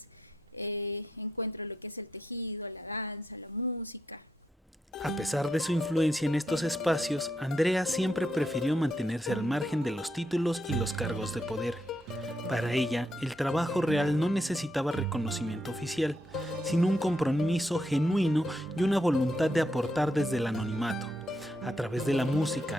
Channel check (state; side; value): normal; both; correlation 0.81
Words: encuentro lo que es el tejido, la danza, la música. A pesar de su influencia en estos espacios, Andrea siempre prefirió mantenerse al margen de los títulos y los cargos de poder. Para ella, el trabajo real no necesitaba reconocimiento oficial, sino un compromiso genuino y una voluntad de aportar desde el anonimato. A través de la música,